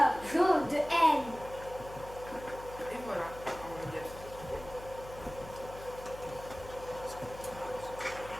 jaune, de haine. Et voilà, on y a tout.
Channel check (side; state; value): left; noise; hum, 15 dB below the sound